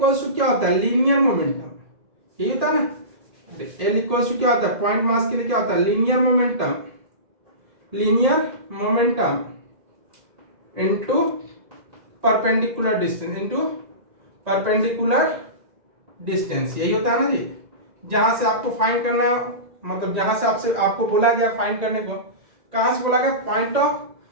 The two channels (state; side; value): late; left; 2.0 ms